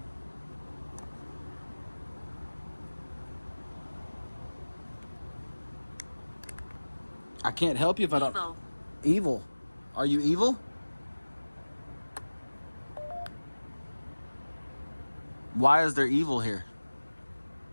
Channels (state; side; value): inverted; both; correlation -1.00